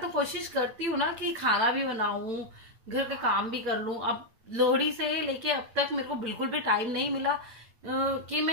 कोशिश करती हूँ ना कि खाना भी बनाऊं, घर का काम भी कर लूं। अब लोहड़ी से लेके अब तक मेरे को बिल्कुल भी टाइम नहीं मिला कि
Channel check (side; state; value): left; late; 8.9 ms